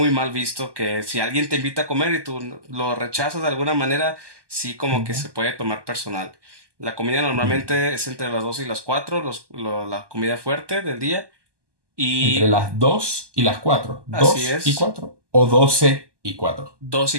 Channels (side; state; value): left; late; 1.2 ms